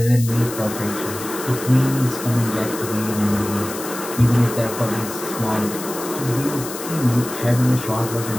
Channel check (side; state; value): left; noise; hiss, 10 dB below the sound